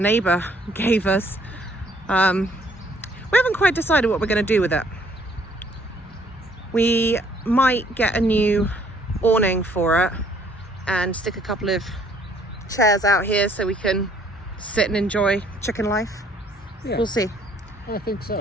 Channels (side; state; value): both; normal; correlation 0.62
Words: gave us. We haven't quite decided what we're going to do with it. We might get a new awning for it and stick a couple of chairs out here so we can sit and enjoy chicken life. Yeah, We'll see. I think